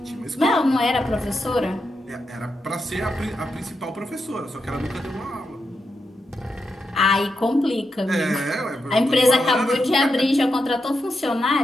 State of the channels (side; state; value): both; normal; correlation 0.86